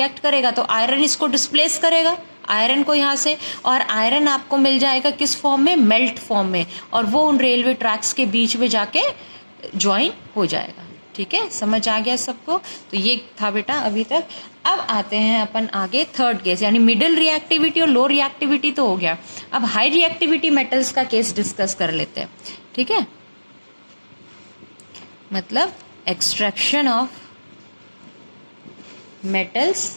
करेगा तो आयरन इसको डिस्प्लेस करेगा, आयरन को यहाँ से, और आयरन आपको मिल जाएगा किस फॉर्म में, मेल्ट फॉर्म में, और वो उन रेलवे ट्रैक्स के बीच में जाके ज्वाइन हो जाएगा। ठीक है, समझ आ गया सबको। तो ये था बेटा अभी तक। अब आते हैं अपन आगे थर्ड केस, यानी मिडिल रिएक्टिविटी और लो रिएक्टिविटी तो हो गया, अब हाई रिएक्टिविटी मेटल्स का केस डिस्कस कर लेते हैं। ठीक है, मतलब extraction of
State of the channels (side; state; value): both; inverted; correlation -1.00